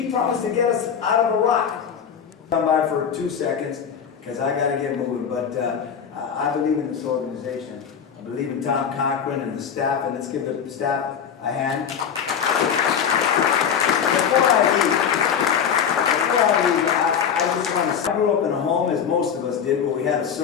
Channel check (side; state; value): right; quieter; 7.6 dB